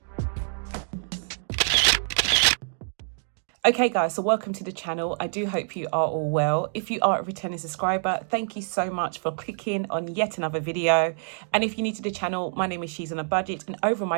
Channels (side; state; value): left; silent; 61 dB below the other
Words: Okay guys, so welcome to the channel. I do hope you are all well. If you are a returning subscriber, thank you so much for clicking on yet another video. And if you're new to the channel, my name is She's on a Budget and over